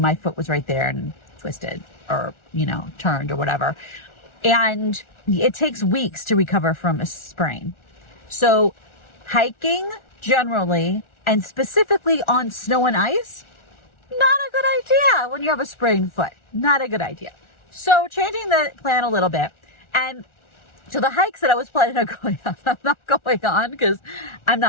my foot was right there and twisted or, turned or whatever. And it takes weeks to recover from a sprain. So hiking generally, and specifically on snow and ice, not a good idea when you have a sprained foot. Not a good idea. So changing the plan a little bit. And so the hikes that I was planning on going on, I'm not going on because I'm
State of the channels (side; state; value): right; late; 1.4 ms